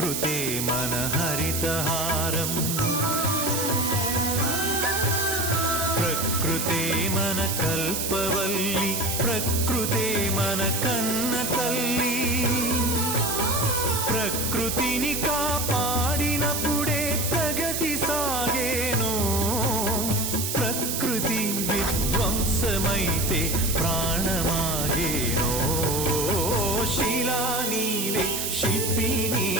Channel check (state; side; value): noise; right; hiss, 1 dB below the sound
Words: మన హరితహారం ప్రకృతే మన కల్పవల్లి, ప్రకృతే మన కన్న తల్లి. ప్రకృతిని కాపాడినప్పుడే ప్రగతి సాగేను. ప్రకృతి విధ్వంసమైతే ప్రాణమాగేనో. శిలా నీవే, శిల్పి